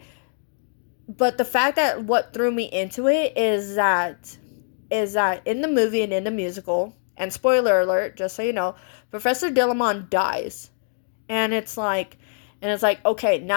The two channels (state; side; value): silent; right; digital silence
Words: But the fact that what threw me into it is that in the movie and in the musical, and spoiler alert, just so you know, Professor Dillamon dies. And it's like, okay,